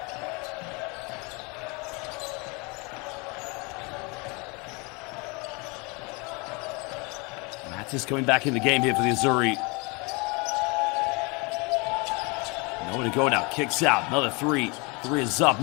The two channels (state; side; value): quieter; right; 29.2 dB